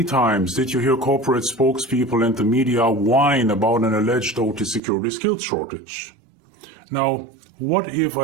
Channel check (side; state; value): left; drops out; at 4.8 s